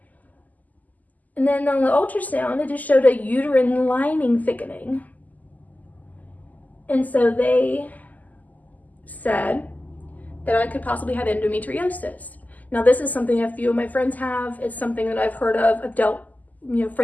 And then on the ultrasound, it just showed a uterine lining thickening. And so they said that I could possibly have endometriosis. Now, this is something a few of my friends have. It's something that I've heard of,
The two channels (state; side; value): late; right; 0.080 ms